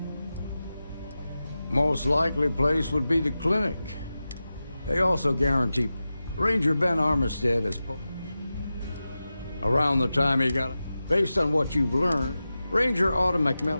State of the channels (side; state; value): both; inverted; correlation -0.93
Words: Most likely place would be the clinic. They also guarantee Ranger Ben Armistead is around the time he got it. Based on what you've learned, Ranger Autumn